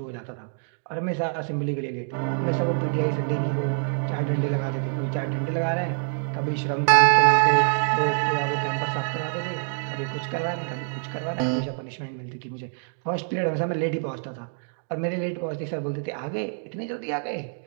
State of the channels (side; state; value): left; silent; digital silence